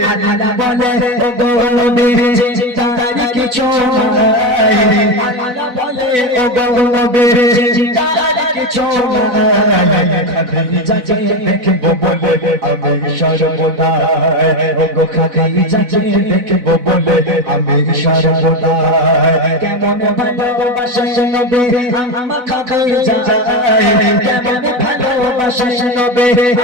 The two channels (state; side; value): late; left; 4.0 ms